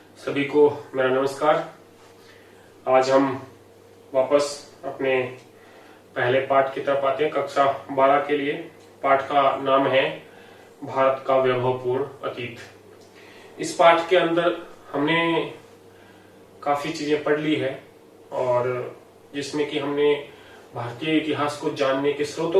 सभी को मेरा नमस्कार। आज हम वापस अपने पहले पाठ की तरफ आते हैं, कक्षा 12 के लिए। पाठ का नाम है भारत का वैभवपूर्ण अतीत। इस पाठ के अंदर हमने काफी चीजें पढ़ ली है और जिसमें कि हमने भारतीय इतिहास को जानने के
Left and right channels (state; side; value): identical; both; correlation 1.00